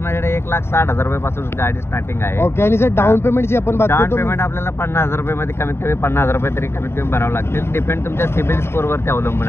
1,60,000 रुपयापासून गाडी स्टार्टिंग आहे. ओके, आणि जर डाऊन पेमेंटची आपण बात डाऊन करतो, पेमेंट आपल्याला 50,000 रुपयामध्ये कमीत कमी 50,000 रुपये तरी कमीत कमी भरावं लागतील. डिपेंड तुमच्या सिबिल स्कोर वरती अवलंबून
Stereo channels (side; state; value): right; late; 0.12 ms